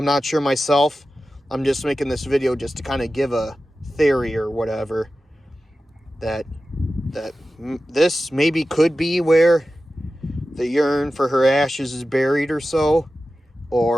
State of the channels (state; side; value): normal; both; correlation 0.94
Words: not sure myself. I'm just making this video just to kind of give a theory or whatever. That this maybe could be where the urn for her ashes is buried or so.